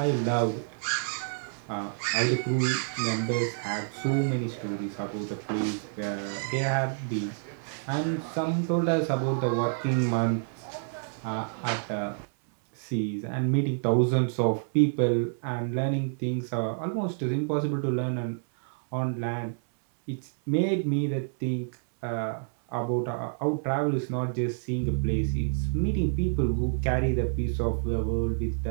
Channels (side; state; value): left; silent; 59 dB below the other